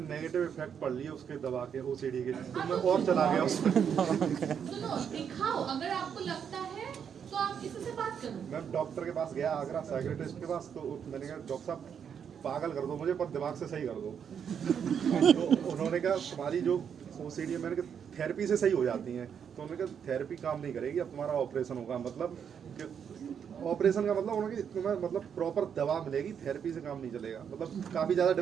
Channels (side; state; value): left; quieter; 7.7 dB